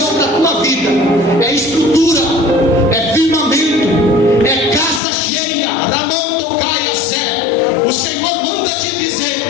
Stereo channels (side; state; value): right; drops out; at 5.0 s